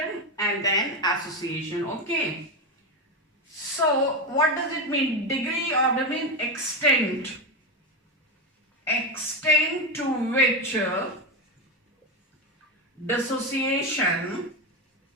and then association. Okay, so what does it mean? Degree of the mean extent to which dissociation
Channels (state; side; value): normal; both; correlation 0.13